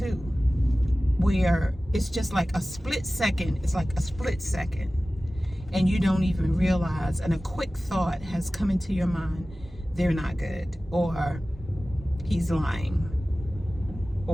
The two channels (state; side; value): normal; both; correlation 0.96